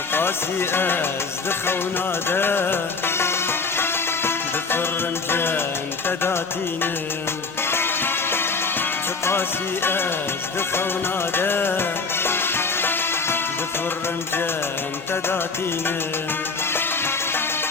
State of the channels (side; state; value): right; quieter; 4.5 dB